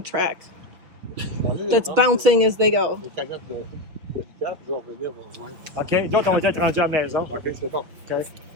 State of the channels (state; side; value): late; left; 6.2 ms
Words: track that's bouncing as they go. OK, d'autres on va être rendus à la maison. OK, c'est bon. OK.